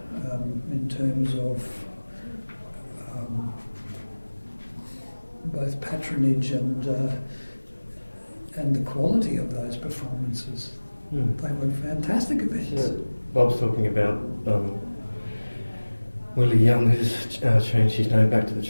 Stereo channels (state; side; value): inverted; both; correlation -1.00